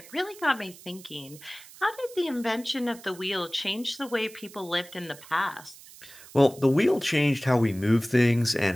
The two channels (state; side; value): noise; right; hiss, 20 dB below the sound